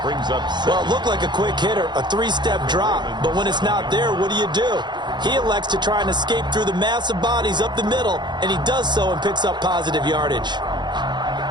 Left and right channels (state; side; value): late; left; 0.21 ms